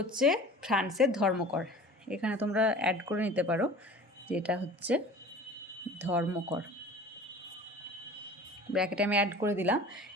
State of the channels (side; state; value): both; normal; correlation 0.41